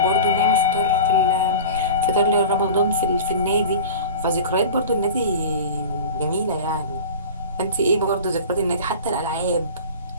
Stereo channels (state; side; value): inverted; both; correlation -0.35